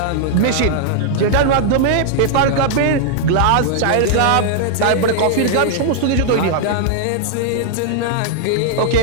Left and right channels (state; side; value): different; both; correlation -0.01